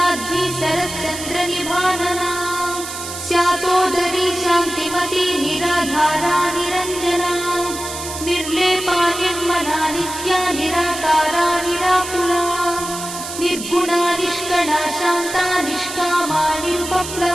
शरच्चन्द्रनिभानना स्यातोदरी शान्तिमती निराधारा निरञ्जना निर्लेपा निर्मला नित्या निराकारा निराकुला निर्गुणा निष्कणा शान्ता निष्कामा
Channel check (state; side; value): noise; right; hiss, 8 dB below the sound